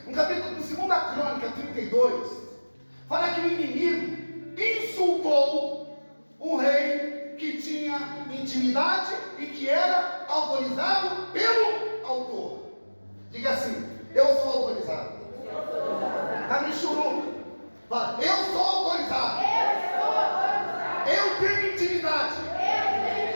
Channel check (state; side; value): inverted; both; correlation -1.00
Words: No capítulo Segunda Crônica 32, fala que o inimigo insultou um rei que tinha intimidade e que era autorizado pelo autor. Diga assim: eu sou autorizado. Está me churuca. Fala: eu sou autorizado. Eu tenho intimidade